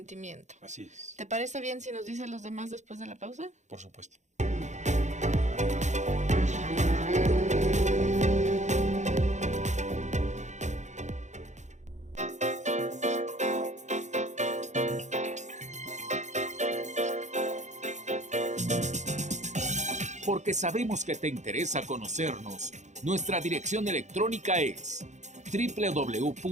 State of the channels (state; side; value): late; left; 0.34 ms